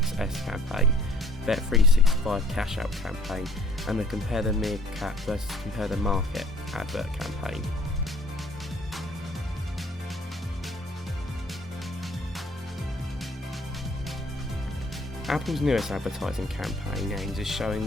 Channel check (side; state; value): both; normal; correlation 0.56